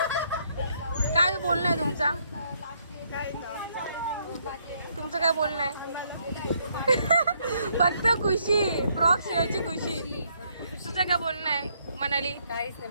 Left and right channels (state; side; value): inverted; both; correlation -0.71